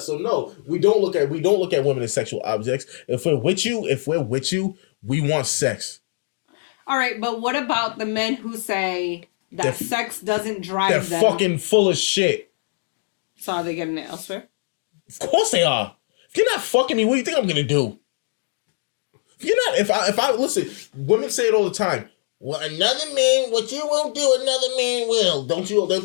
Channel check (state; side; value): silent; right; 64 dB below the other